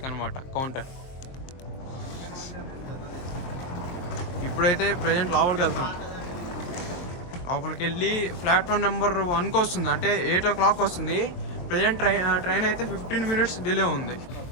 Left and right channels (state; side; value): late; right; 22 ms